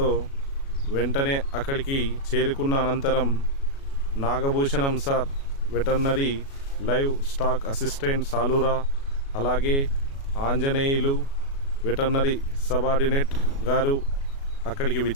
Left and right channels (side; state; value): right; late; 36 ms